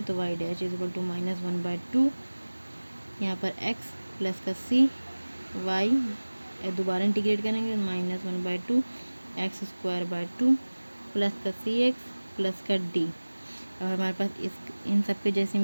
तो y dash is equal to minus 1/2, यहाँ पर x प्लस का c y दोबारा इंटीग्रेट करेंगे minus 1/2 x square by 2 plus का cx प्लस का d। अब हमारे पास इन सब के जैसी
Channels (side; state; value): both; inverted; correlation -1.00